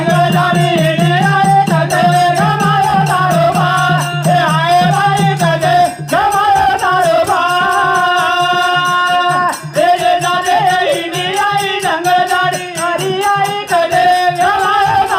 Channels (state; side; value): identical; both; correlation 1.00